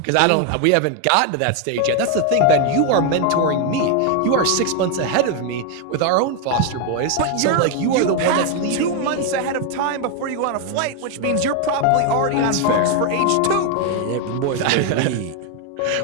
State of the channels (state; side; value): different; both; correlation 0.01